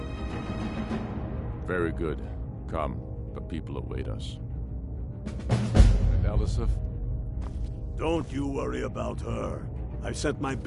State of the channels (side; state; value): both; identical; correlation 1.00